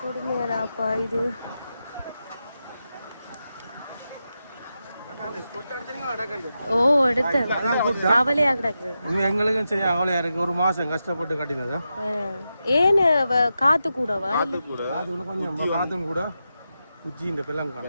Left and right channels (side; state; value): both; inverted; correlation -0.89